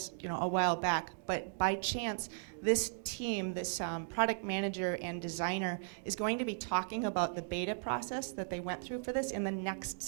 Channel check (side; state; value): left; silent; digital silence